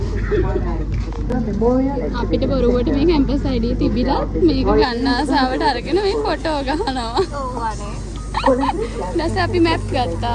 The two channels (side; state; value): both; identical; correlation 1.00